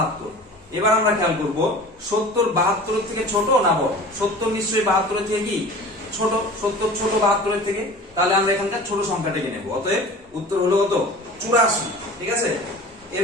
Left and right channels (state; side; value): normal; both; correlation 0.39